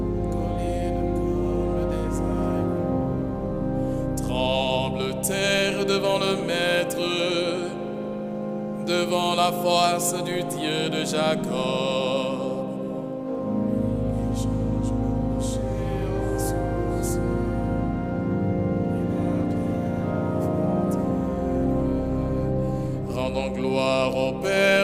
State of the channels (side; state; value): both; identical; correlation 1.00